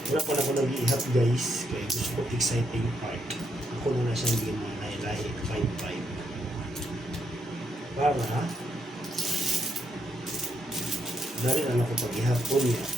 Wala ko na ako nag-iihap guys. Kaya gusto ko exciting part. Ako na siyang ginalahi 5-5. Para dali na ako pag-ihapon niya.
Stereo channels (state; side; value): normal; both; correlation 0.77